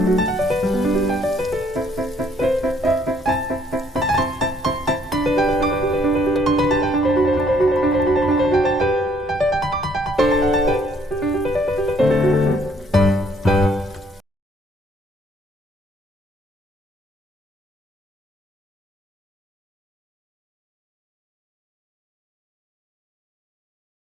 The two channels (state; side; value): normal; both; correlation 0.65